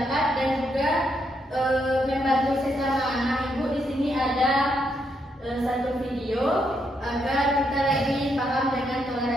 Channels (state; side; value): normal; both; correlation 0.78